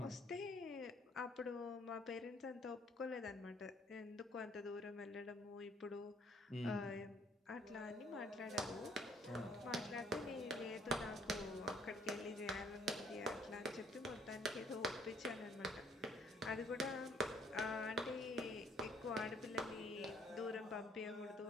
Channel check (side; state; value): both; normal; correlation 0.62